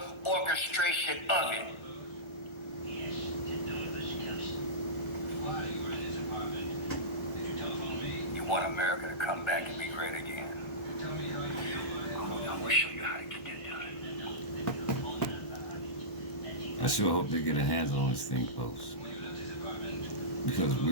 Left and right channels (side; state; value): right; late; 1.2 ms